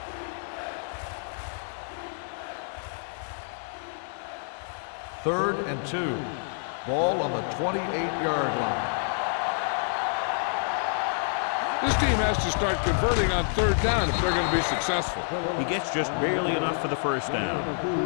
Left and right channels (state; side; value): silent; right; digital silence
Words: Third and 2. Ball on the 28-yard line. There we go, baby. Rock and roll. This team has to start converting on 3rd down if they're going to be successful. He gets just barely enough for the first down. Gain of 2